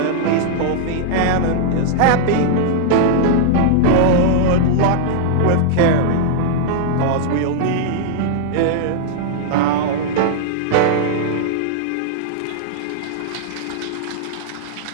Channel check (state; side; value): different; both; correlation -0.01